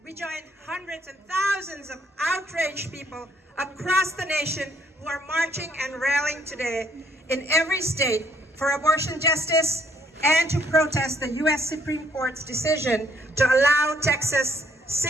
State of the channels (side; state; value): both; normal; correlation 0.66